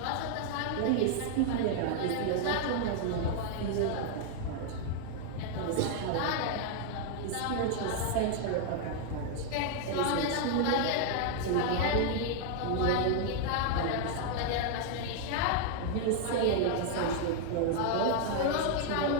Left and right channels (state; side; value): different; both; correlation 0.00